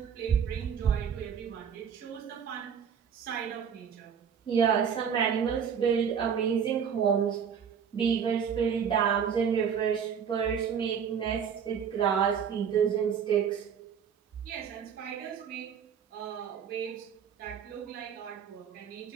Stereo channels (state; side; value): quieter; left; 7.5 dB